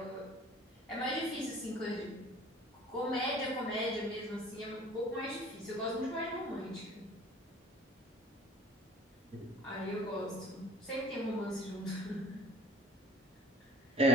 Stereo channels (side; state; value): both; normal; correlation 0.50